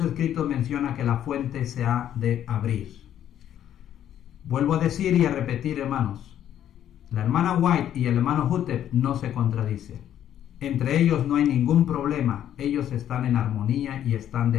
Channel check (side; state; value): right; quieter; 10.7 dB